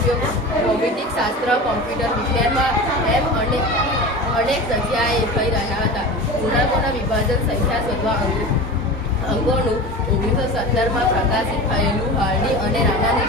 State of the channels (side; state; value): both; normal; correlation 0.31